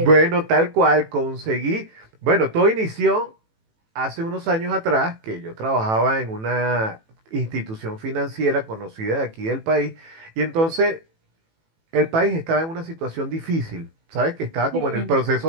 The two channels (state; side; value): late; left; 18 ms